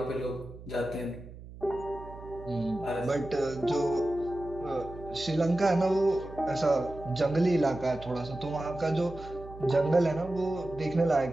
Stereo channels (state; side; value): noise; right; hum, 16 dB below the sound